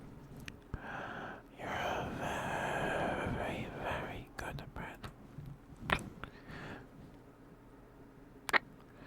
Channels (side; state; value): both; identical; correlation 1.00